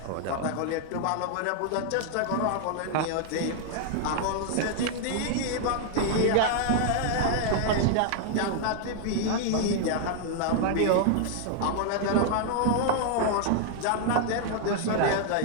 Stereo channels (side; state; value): both; different; correlation 0.00